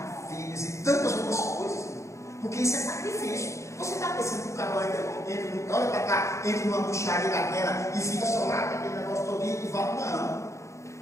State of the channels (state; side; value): late; right; 0.14 ms